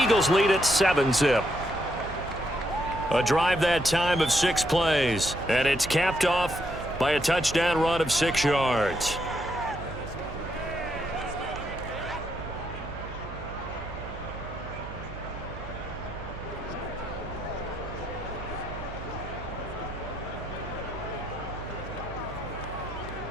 Eagles lead at 7-zip. A drive that time of 6 plays, and it's capped off by a touchdown run of 6 yards.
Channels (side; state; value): right; noise; hum, 12 dB below the sound